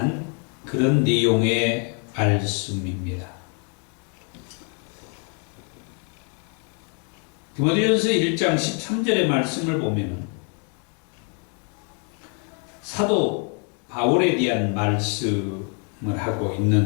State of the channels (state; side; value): quieter; right; 38.5 dB